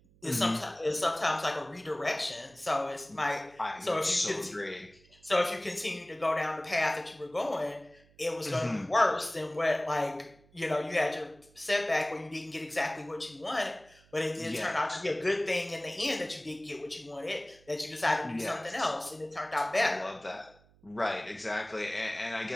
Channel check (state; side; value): noise; right; hum, 29 dB below the sound